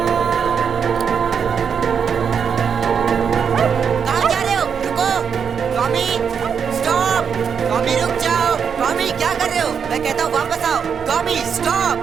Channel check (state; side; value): quieter; left; 6.9 dB